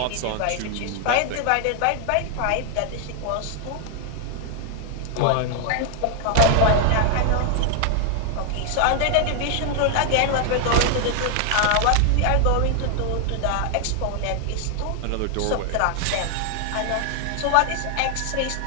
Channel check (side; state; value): both; different; correlation 0.00